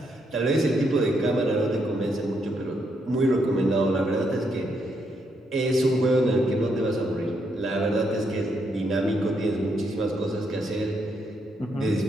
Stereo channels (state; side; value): normal; both; correlation 0.77